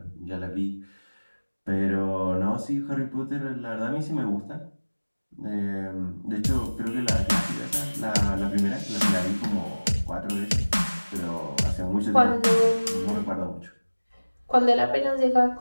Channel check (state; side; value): inverted; both; correlation -1.00